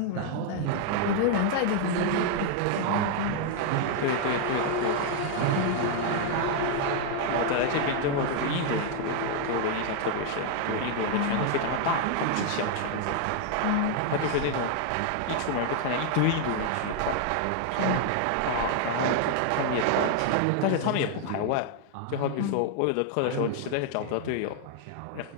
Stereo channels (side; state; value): both; different; correlation 0.00